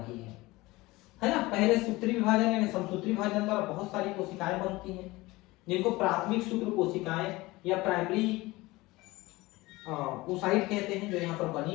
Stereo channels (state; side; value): quieter; right; 20.6 dB